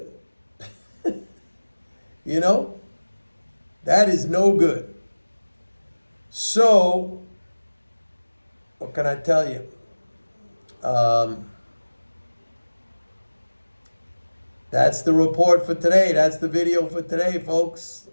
That is no good. So, what can I tell you? That's the report for today. That's the video for today, folks.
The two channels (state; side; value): inverted; both; correlation -1.00